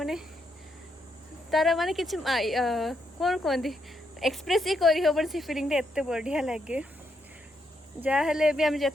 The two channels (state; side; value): normal; both; correlation 0.79